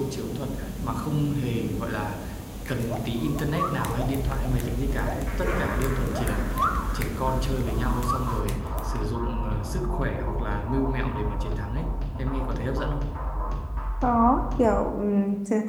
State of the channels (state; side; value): identical; both; correlation 1.00